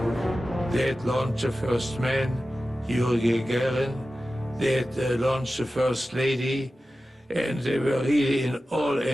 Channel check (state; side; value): normal; both; correlation 0.94